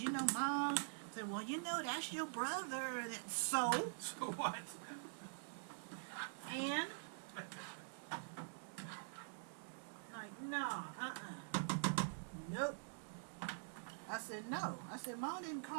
you know, Mom. I said, well, you know, that's your brother. So? So what? And? Like, no, nope. I said, no. I said, Mom didn't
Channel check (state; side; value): silent; left; digital silence